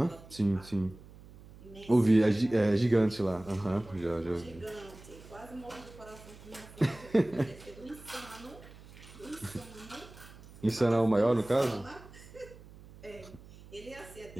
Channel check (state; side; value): noise; right; hum, 19 dB below the sound